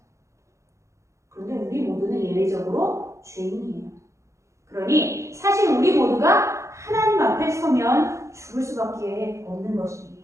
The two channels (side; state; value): left; late; 0.14 ms